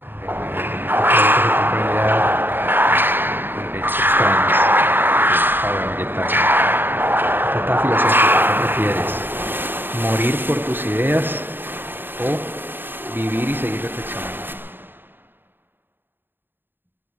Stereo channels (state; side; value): late; left; 0.096 ms